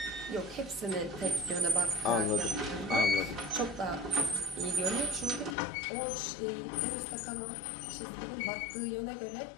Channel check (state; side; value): drops out; right; at 5.6 s